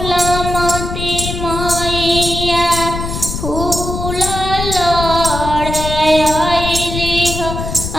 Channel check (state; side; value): noise; left; rumble, 5 dB below the sound